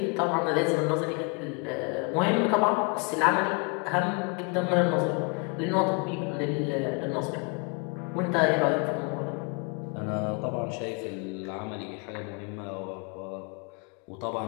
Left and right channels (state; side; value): quieter; right; 33.7 dB